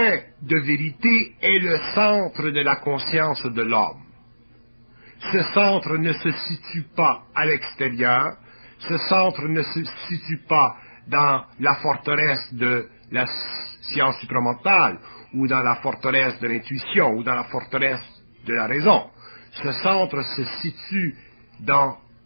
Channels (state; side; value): inverted; both; correlation -1.00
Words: de vérité est le centre de la conscience de l'homme. Ce centre ne se situe pas à l'extérieur, ce centre ne se situe pas dans la forteresse de la science supramentale, ou dans la forteresse de l'intuition, ou dans la forteresse de la raison. Ce centre se situe dans